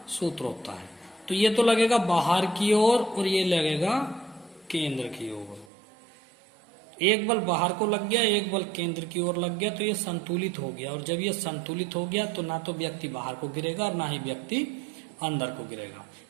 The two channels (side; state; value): left; drops out; at 5.7 s